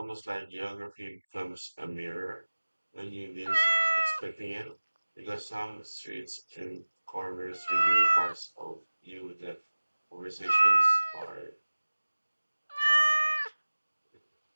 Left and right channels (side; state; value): both; inverted; correlation -1.00